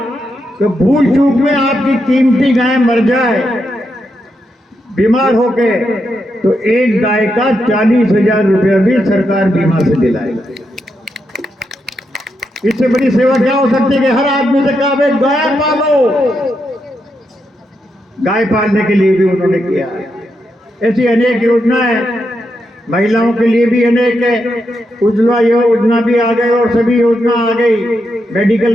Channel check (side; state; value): both; normal; correlation 0.83